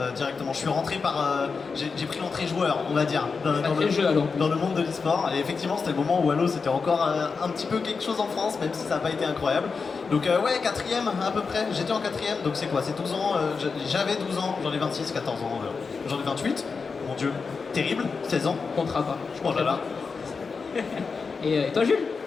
directement. Je suis rentré j'ai pris l'entrée joueur, on va dire, dans le monde de l'e-sport, et effectivement c'était le moment où Halo c'était encore un petit peu quelque chose en France, même si ça n'a pas été incroyable. Donc ouais, 4ème à peu près, j'étais en 4ème, donc c'est quoi, c'est 12 ans, j'avais 12 ans, j'en ai 26, 14 ans, j'en ai 28, mon dieu. Terrible, 16 ans. Comptera pas. Oh là là. Et toi Jules?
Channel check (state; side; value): quieter; right; 4.9 dB